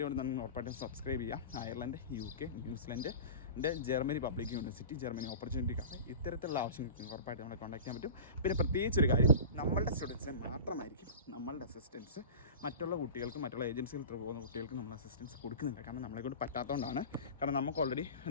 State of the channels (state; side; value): inverted; both; correlation -0.34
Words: കൊണ്ട് നിങ്ങൾ ഉറപ്പായിട്ടും സബ്സ്ക്രൈബ് ചെയ്യുക. Ireland, UK, New Zealand, Germany public university, Germany opportunity cafe, ഇത്തരത്തിലുള്ള ആവശ്യങ്ങൾക്ക് ഉറപ്പായിട്ട് നമ്മളെ കോൺടാക്ട് ചെയ്യാൻ പറ്റും. പിന്നെ പ്രത്യേകിച്ചൊരു കാര്യം, നമ്മളുടെ സ്റ്റുഡൻസിനെ മാത്രമായിരിക്കും നമ്മളുടെ അസിസ്റ്റൻസ് മറ്റുള്ള കുട്ടികൾക്ക്, മറ്റുള്ള ഏജൻസികൾ ത്രൂ പോകുന്ന കുട്ടികൾക്ക് നമ്മൾ അസിസ്റ്റൻസ് കൊടുക്കുന്നുണ്ട്. കാരണം നമ്മളെ കൊണ്ട് പറ്റാത്തതുകൊണ്ടാണ്. കാരണം നമുക്ക് ഓൾറെഡി